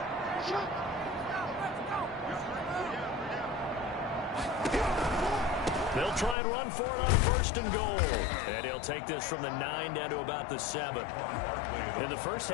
They'll try and run for it on 1st and goal. And he'll take this from the 9 down to about the 7. In the first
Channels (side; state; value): right; drops out; at 6.4 s